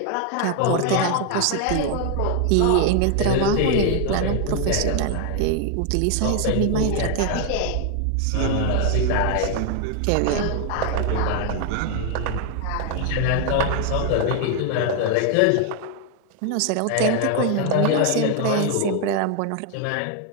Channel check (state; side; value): different; both; correlation 0.00